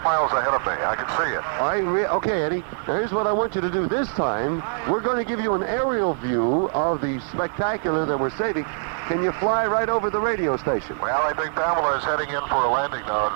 miles ahead of me. I can see it. Okay, Eddie. Now, here's what I want you to do. This time, we're going to give you an aerial view of the spectacular that we're saving. Can you fly right over the radio station? Well, I think Pamela is heading in for a landing now at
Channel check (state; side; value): silent; left; digital silence